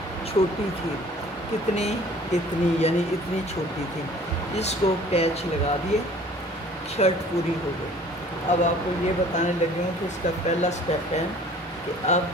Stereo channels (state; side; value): normal; both; correlation 0.50